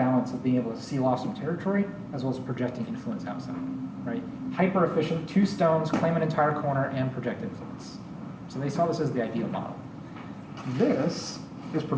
of being able to seal off some territory as well as projecting influence outside, right? Hyper efficient, 2 stones, claim an entire corner, and project influence. So they saw this as the ideal model. This is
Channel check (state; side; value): identical; both; correlation 1.00